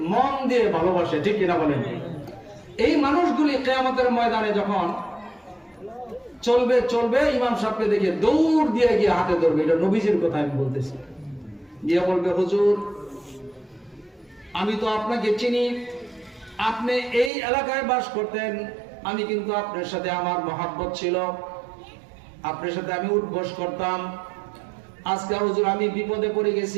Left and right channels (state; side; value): drops out; left; at 17.3 s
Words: মন দিয়ে ভালোবাসে, ঠিক কিনা বলেন? এই মানুষগুলি কিয়ামতের ময়দানে যখন চলবে চলবে ইমাম সাহেবকে দেখে দৌড় দিয়ে গিয়ে হাতে ধরবে, এটা নবীজির কথা আমি বলতেছি, গিয়ে বলবে, হুজুর আমি তো আপনাকে চিনি, আপনি এই এলাকায় বাস করতেন, আমি কিন্তু আপনার সাথে আমার মহাব্বত ছিল, আপনার সাথে আমি উঠবস করতাম। আজকে হুজুর আমি বিপদে পড়ে